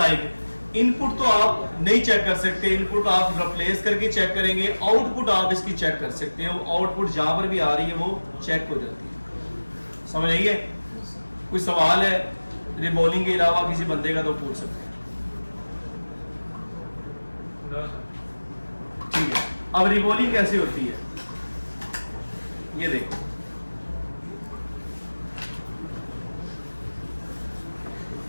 इनपुट तो आप नहीं चेक कर सकते, इनपुट आप रिप्लेस करके चेक करेंगे, आउटपुट आप इसकी चेक कर सकते हैं। आउटपुट जहां पर भी आ रही है वो चेक हो जाती है। समझ आइए? कोई सवाल है रिबॉलिंग के अलावा किसी बंदे का तो पूछ सकते हैं। ठीक है, अब रिबॉलिंग कैसे होती है ये देखो।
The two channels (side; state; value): both; inverted; correlation -1.00